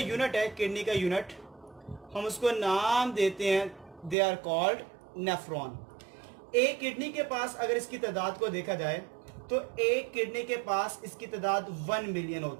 है, किडनी का यूनिट हम उसको नाम देते हैं, दे आर कॉल्ड नेफ्रॉन। एक किडनी के पास अगर इसकी तादाद को देखा जाए तो एक किडनी के पास इसकी तादाद 1 मिलियन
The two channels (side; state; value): left; drops out; at 4.2 s